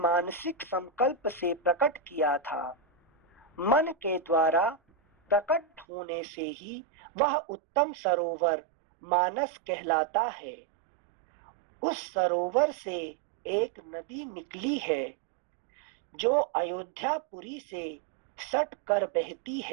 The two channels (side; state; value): left; drops out; at 5.9 s